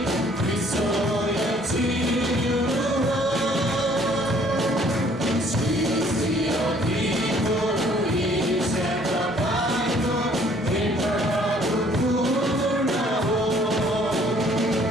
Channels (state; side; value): normal; both; correlation 0.59